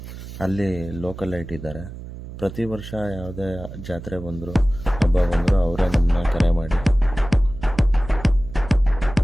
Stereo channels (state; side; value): noise; right; hum, 12 dB below the sound